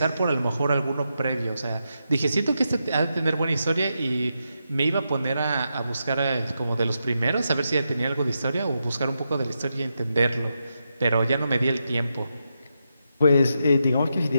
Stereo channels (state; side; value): inverted; both; correlation -0.85